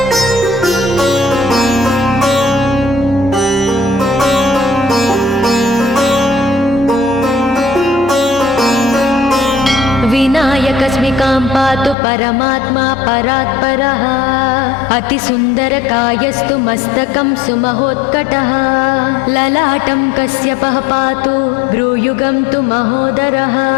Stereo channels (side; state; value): right; drops out; at 12.0 s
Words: विनायकस्मिकां पातु परमात्मा परात्परः अतिसुन्दरकायस्तु मस्तकं सुमहोत्कटः ललाटं कश्यपः पातु भ्रूयुगं तु महोदरः